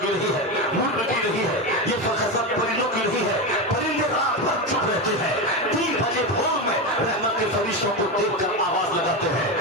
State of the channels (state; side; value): normal; both; correlation 0.16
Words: کی نہیں ہے, ملک کی نہیں ہے, یہ حضرت پرندوں کی نہیں ہے. پرندے رات بھر چپ رہتے ہیں, 3 بجے بھور میں رحمت کے فرشتوں کو دیکھ کر آواز لگاتے ہیں.